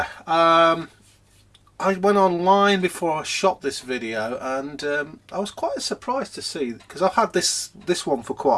I went online before I shot this video, and I was quite surprised to see, because I've had this one for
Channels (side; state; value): both; identical; correlation 1.00